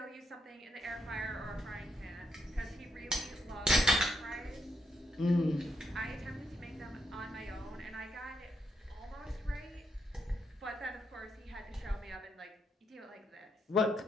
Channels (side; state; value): both; normal; correlation 0.79